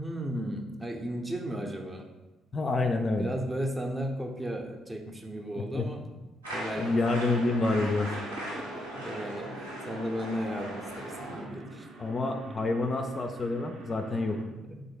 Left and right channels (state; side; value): normal; both; correlation 0.80